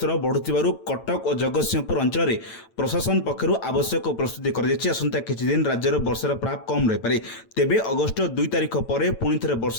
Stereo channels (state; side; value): late; right; 9.0 ms